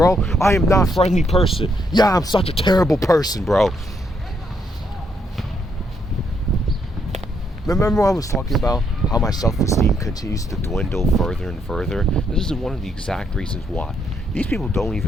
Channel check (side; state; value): both; normal; correlation 0.74